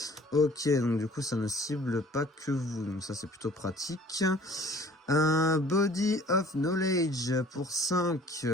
Ok, donc du coup, ça ne cible pas que vous, donc ça, c'est plutôt pratique. Body of Knowledge pour 5,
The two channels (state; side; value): normal; both; correlation 0.52